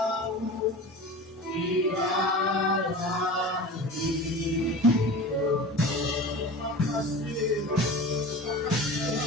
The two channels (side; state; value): both; normal; correlation 0.34